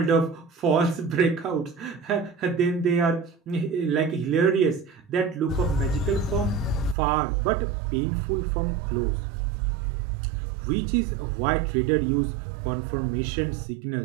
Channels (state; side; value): drops out; left; at 7.0 s